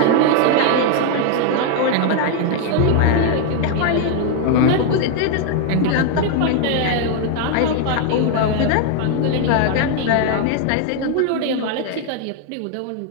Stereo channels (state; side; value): different; both; correlation 0.00